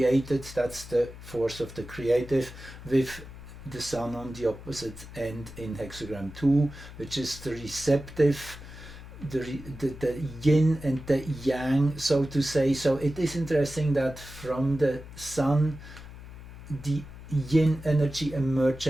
That's the force of the creative, with the sun on the opposite end in hexagram 2, which is the receptive, the yin and the yang, so to say. So it is interesting that from the sun, the yin energy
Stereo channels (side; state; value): left; noise; hum, 15 dB below the sound